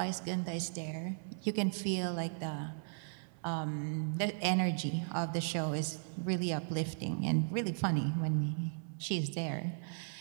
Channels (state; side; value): silent; left; 53 dB below the other